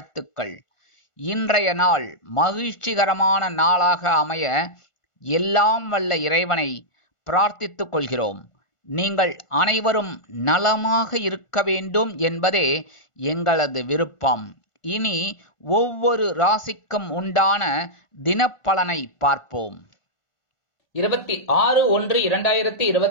இன்றைய நாள் மகிழ்ச்சிகரமான நாளாக அமைய எல்லாம் வல்ல இறைவனை பிரார்த்தித்துக் கொள்கிறோம். நீங்கள் அனைவரும் நலமாக இருக்க வேண்டும் என்பதே எங்களது விருப்பம். இனி ஒவ்வொரு ராசிக்கும் உண்டான தினப்பலனை பார்ப்போம்.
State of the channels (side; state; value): right; late; 1.5 ms